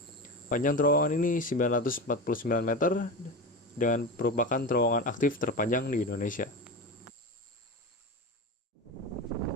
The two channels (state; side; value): normal; both; correlation 0.23